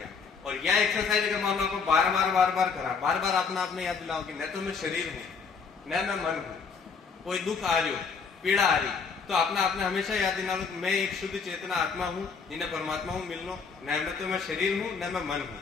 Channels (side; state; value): right; quieter; 5.4 dB